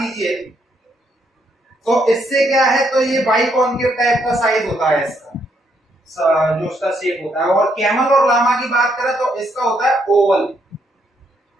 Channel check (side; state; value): both; normal; correlation 0.74